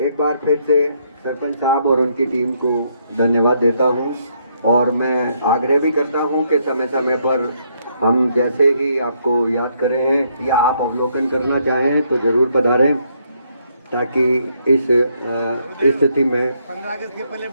बार फिर से सरपंच साहब और उनकी टीम को धन्यवाद देता हूं और मैं आग्रह भी करता हूं कि समय समय पर हम जैसे ही आपको याद करें या आप अवलोकन करना चाहें तो जरूर पधारें, ताकि इस स्थिति में 15 अगस्त के पहले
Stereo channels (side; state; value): both; inverted; correlation -0.73